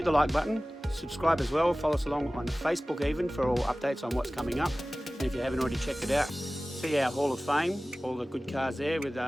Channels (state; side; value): normal; both; correlation 0.97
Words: the like button, subscribe as well, follow us along on Facebook even for all updates on what's coming up. And if you haven't already checked it out, see our Hall of Fame, all the good cars there with